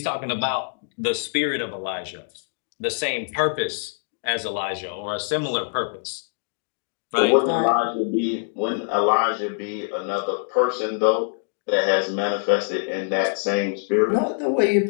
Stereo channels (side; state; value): right; silent; digital silence